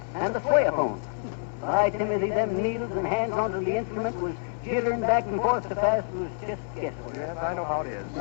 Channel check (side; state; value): right; silent; digital silence